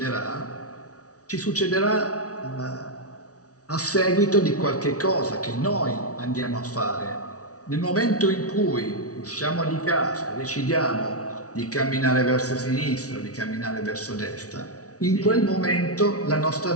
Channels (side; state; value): right; late; 0.67 ms